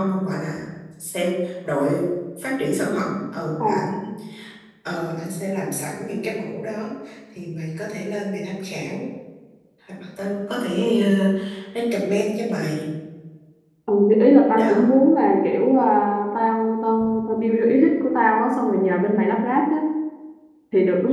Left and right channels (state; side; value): identical; both; correlation 1.00